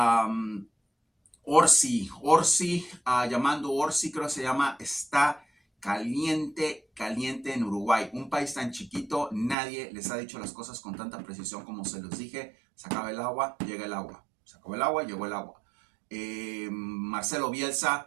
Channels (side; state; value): left; drops out; at 9.6 s